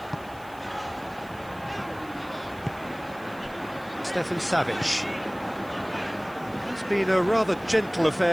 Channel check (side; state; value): right; noise; hiss, 24 dB below the sound